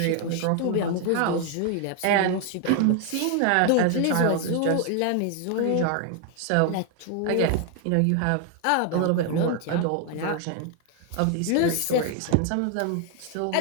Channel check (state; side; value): different; both; correlation 0.00